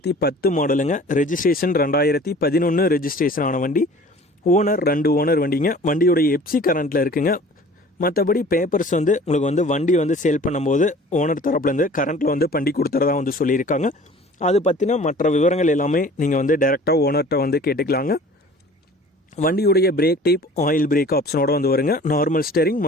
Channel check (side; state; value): both; normal; correlation 0.46